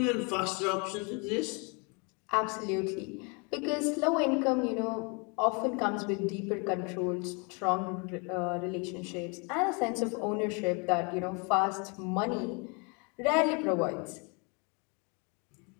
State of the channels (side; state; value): right; quieter; 32.8 dB